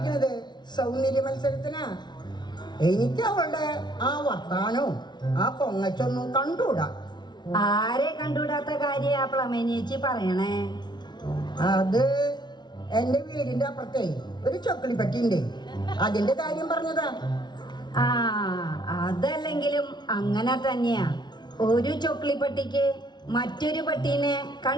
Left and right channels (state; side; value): late; right; 0.20 ms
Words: സൗന്ദര്യ മത്സരത്തിനാ. എനിക്ക് അവളുടെ ആ വർത്താനവും ആ പൊങ്ങച്ചൊന്നും കണ്ടുകൂടാ. ആരെ കണ്ടുകൂടാത്ത കാര്യ പ്ലമേനേച്ചി പറയണേ? അത് എന്റെ വീടിന്റെ അപ്പുറത്തെ ഒരു ചൊക്കളിപ്പട്ടിയുണ്ട്, അതിന്റെ കാര്യം പറഞ്ഞതാ. ആ, അതല്ലെങ്കിലും അങ്ങനെ തന്നെയാ. ഒരു ചൊക്ലിപ്പട്ടിക്ക് മറ്റൊരു പട്ടീനെ